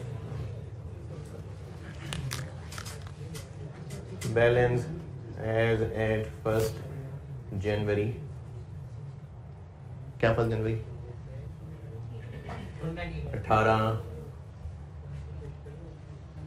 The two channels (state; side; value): identical; both; correlation 1.00